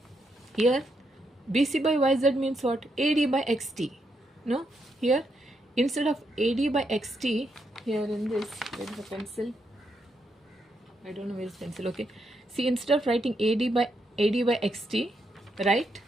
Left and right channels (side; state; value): both; normal; correlation 0.80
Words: Here BC by YZ means what? AD by XT. No, here instead of AD by XT, here in this, where is the pencil? I don't know where is pencil, okay. See, instead of writing AD by XT, write